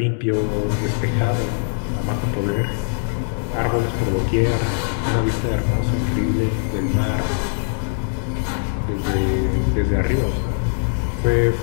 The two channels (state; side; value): silent; right; digital silence